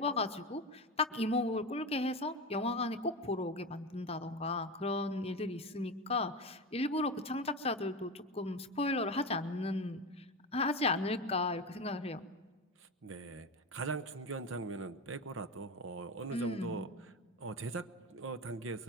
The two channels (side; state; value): both; normal; correlation 0.21